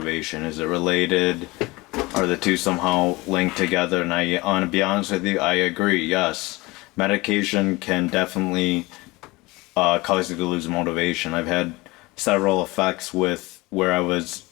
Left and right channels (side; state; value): right; quieter; 22.5 dB